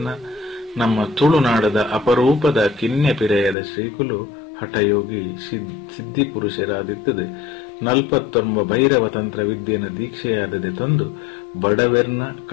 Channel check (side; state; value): right; drops out; at 3.6 s